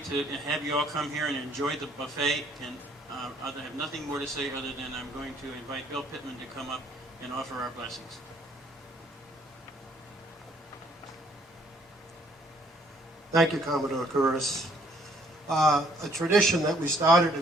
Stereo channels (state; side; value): normal; both; correlation 0.63